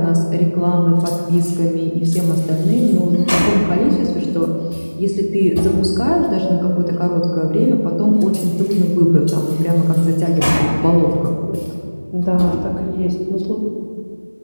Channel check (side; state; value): both; inverted; correlation -1.00